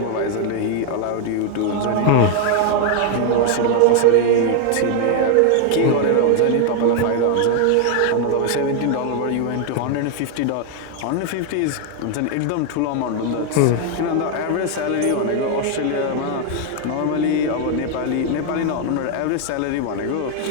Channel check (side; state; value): both; different; correlation 0.00